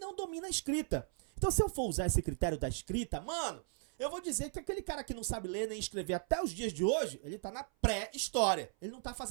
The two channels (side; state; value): left; silent; 53 dB below the other